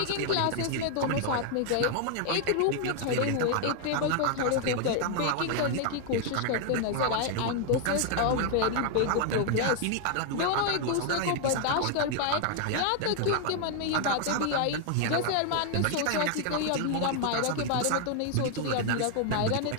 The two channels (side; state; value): both; different; correlation 0.00